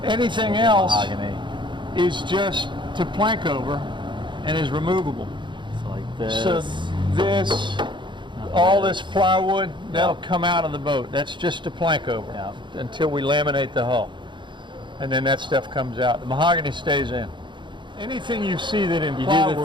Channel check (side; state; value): left; late; 0.23 ms